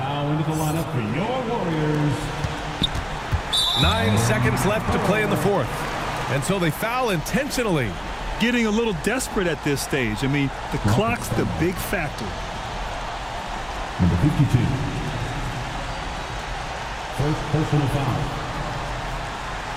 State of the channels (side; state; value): both; identical; correlation 1.00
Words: into the lineup for your Warriors. 9 seconds left to play in the fourth. And so they foul intentionally. Getting a little desperate at this stage. I mean, the clock's the big factor. Number 52. First personal foul.